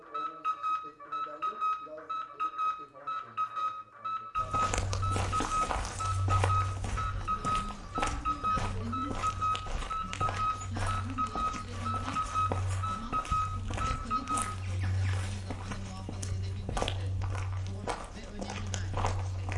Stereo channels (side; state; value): both; identical; correlation 1.00